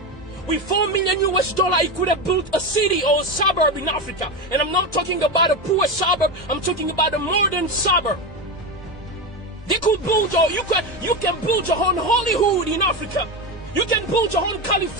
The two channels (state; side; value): normal; both; correlation 0.16